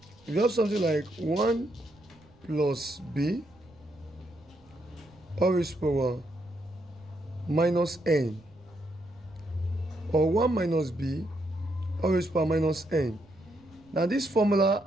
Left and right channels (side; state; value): right; noise; rumble, 28 dB below the sound